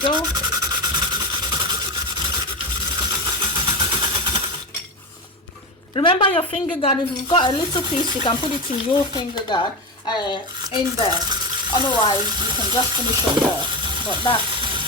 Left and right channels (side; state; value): both; normal; correlation 0.20